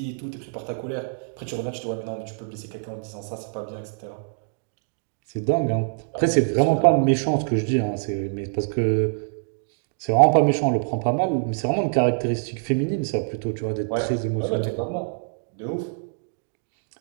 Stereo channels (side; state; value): left; silent; digital silence